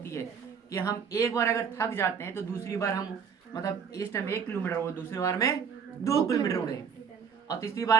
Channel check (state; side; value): quieter; left; 6.7 dB